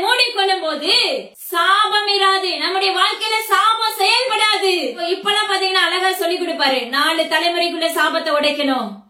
மூடிக்கொள்ளும் போது சாபம் இராது. நம்முடைய வாழ்க்கையில சாபம் செயல்படாது. இப்பெல்லாம் பாத்தீங்கன்னா அழகா சொல்லி கொடுப்பாரு, 4 தலைமுறைக்குள்ள சாபத்தை உடைக்கணும்.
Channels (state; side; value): identical; both; correlation 1.00